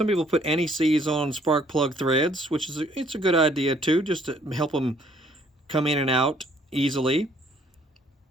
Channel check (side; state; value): both; normal; correlation 0.63